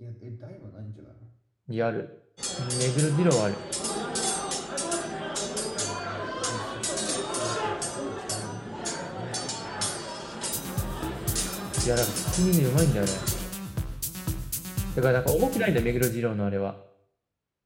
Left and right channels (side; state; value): both; identical; correlation 1.00